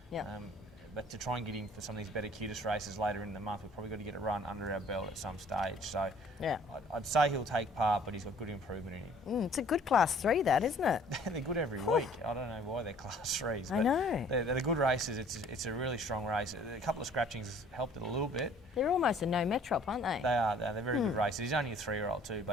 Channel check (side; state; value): both; normal; correlation 0.55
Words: Yeah. But to try and get him for some of these better cutest races later in the month, we've probably got to get a run under our belt at some stage. So yeah, I'd say he'll take part, but he's got good improvement in him. It's a good Class 3, that, isn't it? They're good every week. I don't know why they're Class 3s. I know. They're good races. It's a really strong race. A couple of scratchings helped it a little bit. They're almost a no metrop, aren't they? They are. They're very good races. He's only a 3-year-old too,